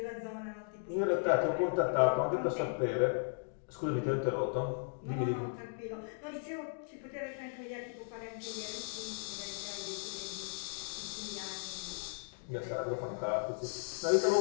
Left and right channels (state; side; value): silent; right; digital silence